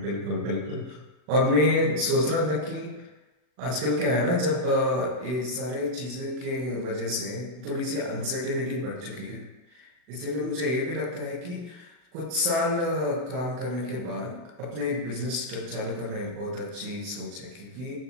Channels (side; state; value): left; late; 40 ms